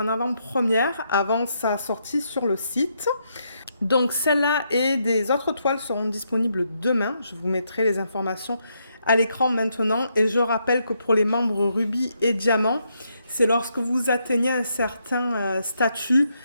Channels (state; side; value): inverted; both; correlation -0.78